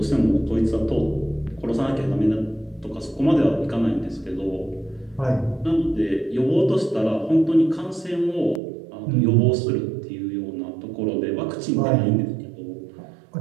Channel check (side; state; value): left; drops out; at 8.6 s